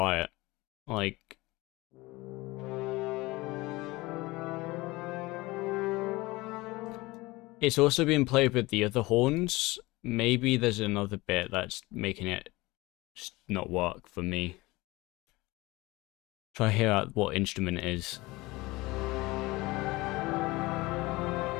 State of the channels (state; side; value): quieter; right; 21.3 dB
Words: Like, it's also being played with the other horns. Maybe there's another bit that's making it just not work for me. Try to hear out what instrument it is.